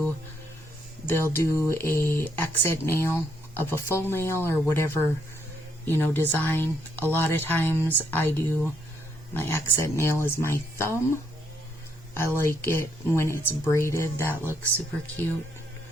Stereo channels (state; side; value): normal; both; correlation 0.73